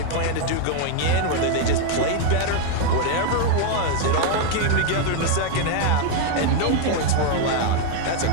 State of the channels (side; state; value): both; different; correlation 0.01